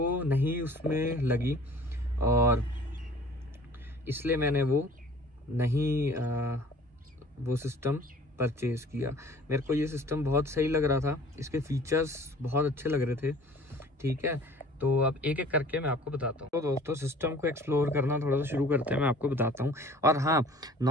नहीं उसमें लगी और इसलिए मैंने वो नहीं वो सिस्टम परचेज़ किया। मेरे को ये सिस्टम बहुत सही लग रहा था, इसके फीचर्स बहुत अच्छे लग रहे थे, ठीक है। तो अब एक एक करके मैं आपको बताता हूँ। तो दोस्तों सिस्टम को एक्सप्लोर करना थोड़ा सा शुरू करते हैं, मैं आपको बताता हूँ। और हाँ,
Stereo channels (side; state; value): both; normal; correlation 0.49